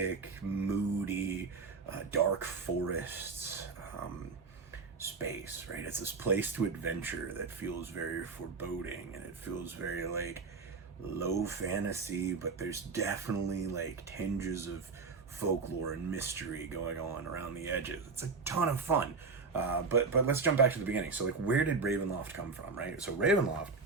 moody, dark forests space, right? It's this place to adventure that feels very foreboding, and it feels very low fantasy, but there's definitely tinges of folklore and mystery going on around the edges. It's a ton of fun. But let's jump back to the beginning. So where did Ravenloft come from, right? So Ravenloft,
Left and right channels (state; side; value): quieter; left; 4.5 dB